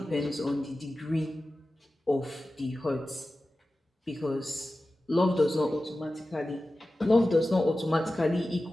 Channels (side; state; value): both; normal; correlation 0.95